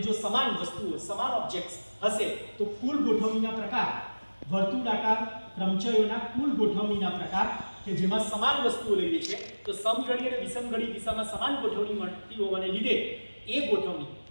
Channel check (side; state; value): both; inverted; correlation -1.00